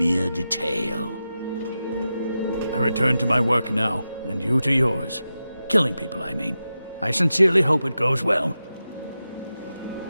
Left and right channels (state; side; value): inverted; both; correlation -0.91